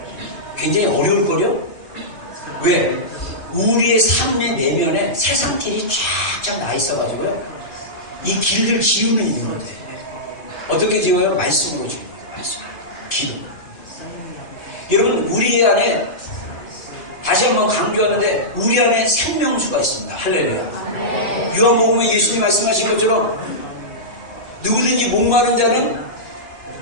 굉장히 어려울 거예요? 왜? 우리의 삶의 내면에 세상길이 쫙쫙 나 있어가지고요. 이 길을 지우면 있는 거예요. 어떻게 지워요? 말씀으로 지웁니다. 말씀. 기도. 여러분, 우리 안에, 다시 한번 강조하는데, 우리 안에 생명수가 있습니다. 할렐루야. 요한복음에 예수님 말씀하신 것처럼, 누구든지 목마른 자는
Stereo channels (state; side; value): late; right; 2.5 ms